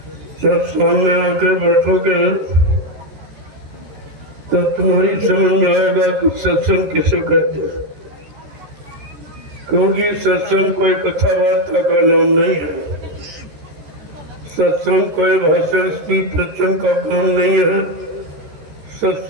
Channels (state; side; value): late; left; 13 ms